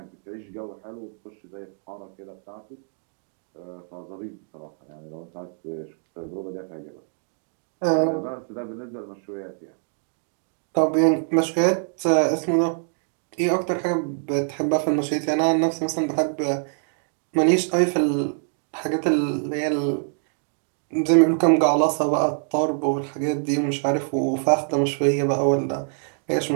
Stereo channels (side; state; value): left; silent; 62 dB below the other